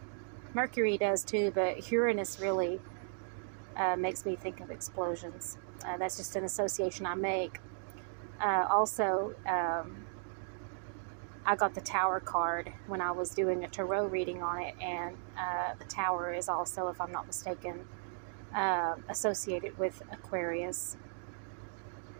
Mercury does too, but Uranus really makes me think of explosions. That's just an association I make. Also, I got the Tower card when I was doing a tarot reading on it, and the Tower is also, if I'm not mistaken, associated with Aquarius.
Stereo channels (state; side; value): silent; left; digital silence